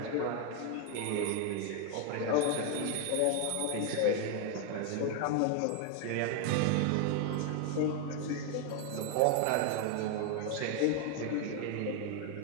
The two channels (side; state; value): both; different; correlation 0.01